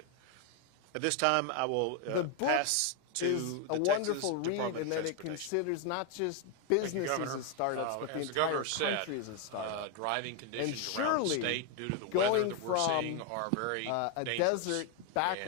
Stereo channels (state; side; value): different; both; correlation 0.01